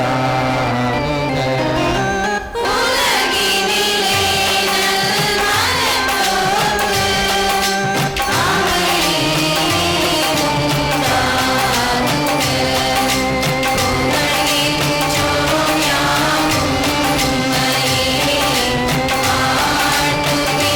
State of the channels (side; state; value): both; identical; correlation 1.00